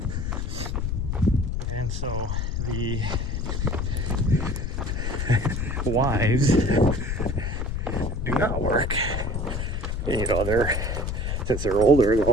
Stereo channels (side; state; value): left; noise; rumble, 2 dB below the sound